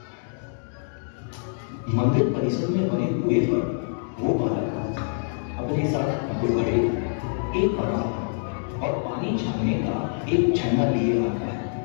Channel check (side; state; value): right; silent; digital silence